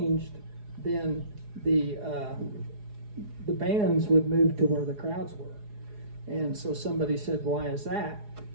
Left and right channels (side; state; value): left; late; 4.8 ms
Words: then the bands would move to where the crowds were. And so somebody said, why is that?